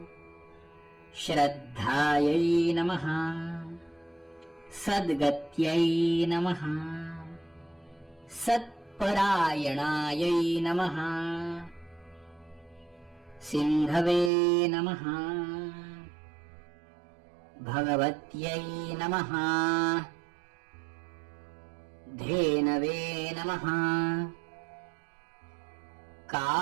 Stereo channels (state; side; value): drops out; left; at 14.3 s